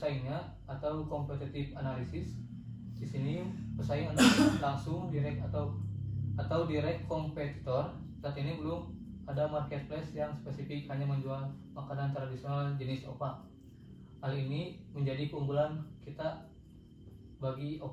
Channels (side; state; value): both; identical; correlation 1.00